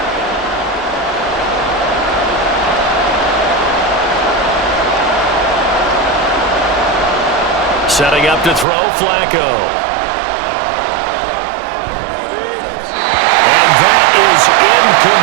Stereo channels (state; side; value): drops out; left; at 8.7 s